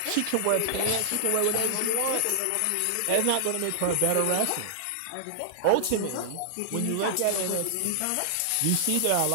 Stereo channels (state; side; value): different; both; correlation -0.01